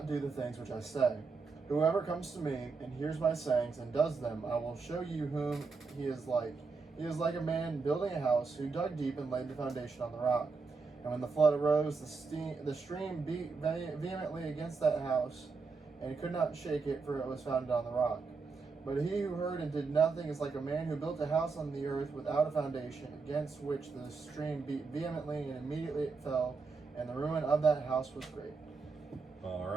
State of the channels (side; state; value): left; quieter; 4.6 dB